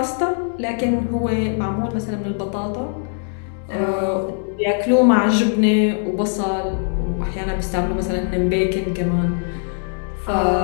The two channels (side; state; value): right; silent; 58 dB below the other